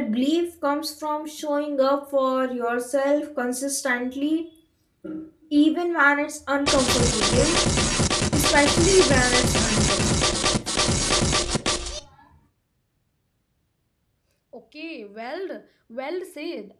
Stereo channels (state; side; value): identical; both; correlation 1.00